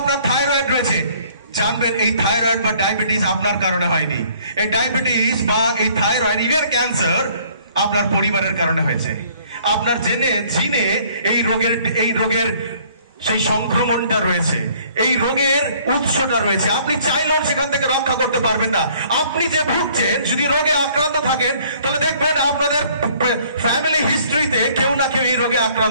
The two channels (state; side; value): inverted; both; correlation -0.59